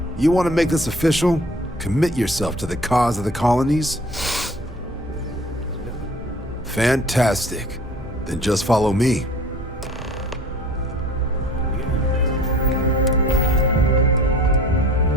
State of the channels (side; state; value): both; normal; correlation 0.47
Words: you want to make this official? Commit yourself to the cause of the colonies? Fantastic. Then just follow me.